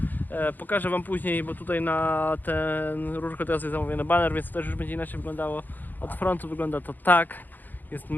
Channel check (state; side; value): late; right; 0.086 ms